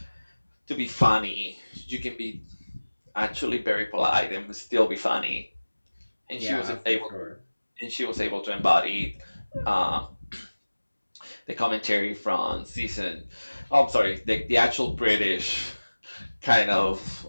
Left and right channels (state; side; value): inverted; both; correlation -1.00